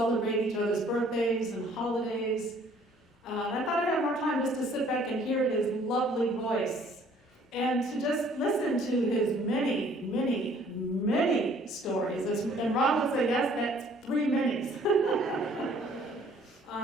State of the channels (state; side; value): normal; both; correlation 0.58